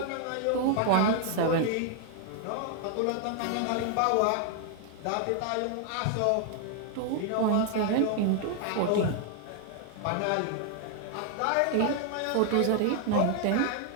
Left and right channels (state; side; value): different; both; correlation 0.00